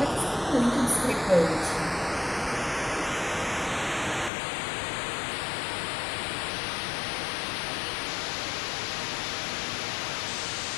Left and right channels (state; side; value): drops out; right; at 4.3 s